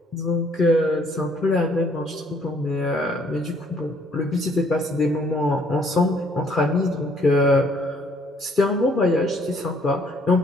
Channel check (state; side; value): normal; both; correlation 0.64